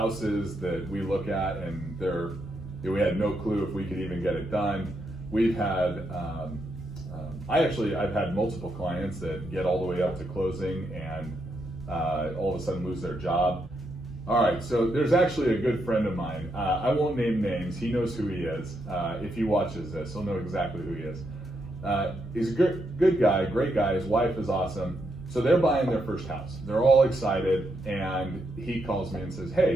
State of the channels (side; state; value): both; normal; correlation 0.80